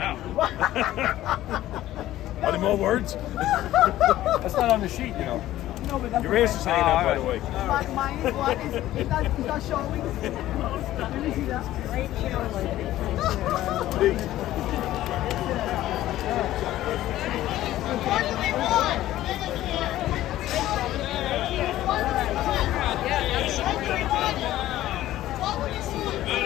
Are there more words? That's not on the sheet, you know. No, but that's Your ass is hanging out, by the way. Mine is what? Is that showing? Let me see that. What do we want?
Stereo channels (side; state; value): right; quieter; 14.4 dB